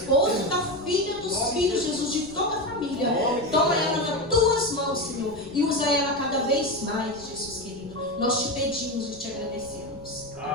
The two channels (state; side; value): noise; right; rumble, 19 dB below the sound